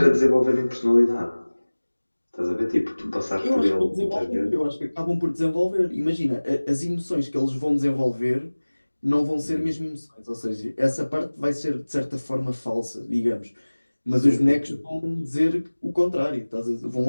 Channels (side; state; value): both; inverted; correlation -1.00